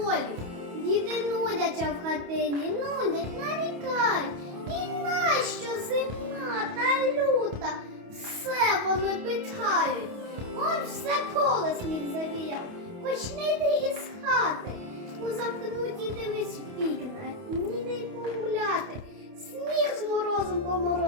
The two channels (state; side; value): late; left; 28 ms